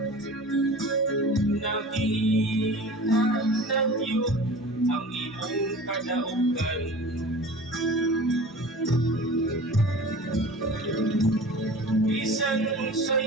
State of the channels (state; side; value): normal; both; correlation 0.39